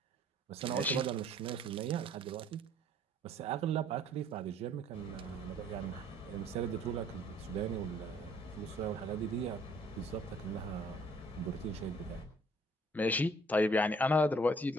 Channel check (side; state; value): both; normal; correlation 0.59